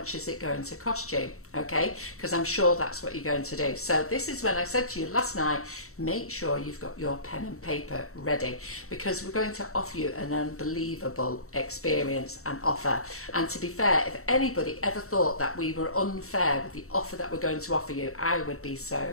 is it going to cost you, okay? Because I'm sure that's what you're going to do. So this is when I said to you last night, make sure you've got your pen and paper ready, because we're going to offer you an unbelievable experience and offer. And to be fair, if anybody ever thought that we were unfair with the offer that we're going to offer you, I would be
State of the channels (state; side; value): late; right; 0.64 ms